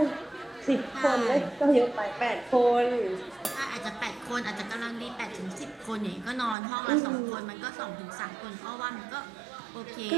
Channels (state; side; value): drops out; left; at 6.6 s